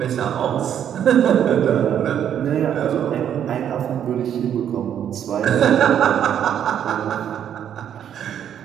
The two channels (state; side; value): quieter; left; 9.5 dB